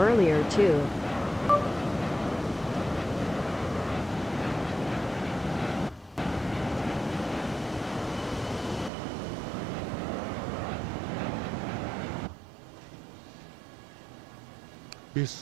too. け？ベ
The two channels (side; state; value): left; drops out; at 8.9 s